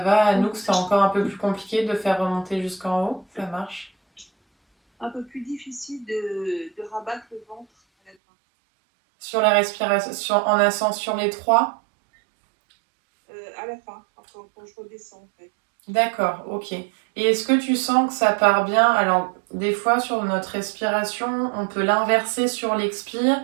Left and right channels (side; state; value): left; drops out; at 8.2 s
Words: Anouk, c'est encore un peu plus compliqué de faire remonter jusqu'en haut? Ça marche? Un peu plus difficile de rabattre le ventre à la fin. Sur la respiration, en ascensant sur les 3? À la fin, quand je redescends en fait. D'accord, ok. Et est-ce que tu sens que ça part bien? Alors, des fois, sur notre respiration, on peut l'inverser sur l'expire